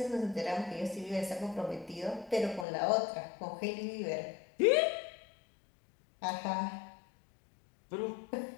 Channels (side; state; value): right; drops out; at 2.7 s